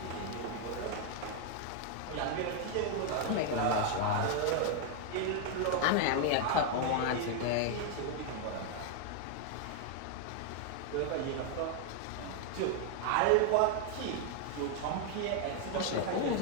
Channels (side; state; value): both; different; correlation 0.00